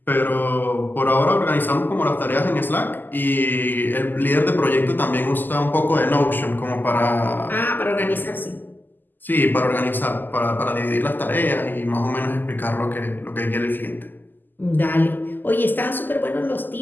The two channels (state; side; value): late; right; 0.089 ms